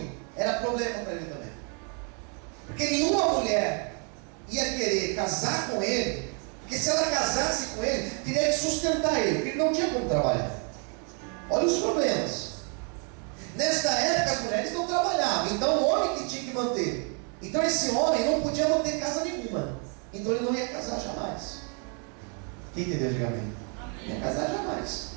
era problema para ele também. Porque nenhuma mulher ia querer casar com ele, porque se ela casasse com ele, teria que sustentar ele, porque ele não tinha como trabalhar. Olha os problemas. Nesta época as mulheres não trabalhavam, então o homem que tinha que manter. Então esse homem não podia manter casa nenhuma, então ele não ia casar jamais. Quem entendeu, diga amém. Não ia casar jamais.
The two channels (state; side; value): quieter; left; 38.6 dB